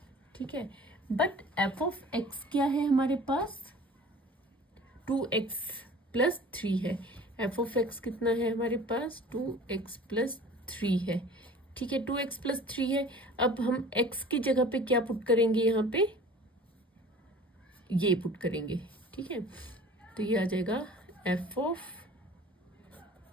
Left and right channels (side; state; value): both; normal; correlation 0.44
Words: ठीक है। बट एफ ऑफ x क्या है हमारे पास, 2x प्लस 3 है। एफ ऑफ x कितना है हमारे पास, 2x प्लस 3 है। ठीक है, 2x प्लस 3 है। अब हम x की जगह पे क्या पुट करेंगे, यहाँ पे ये पुट करेंगे। ठीक है, तो ये आ जाएगा एफ ऑफ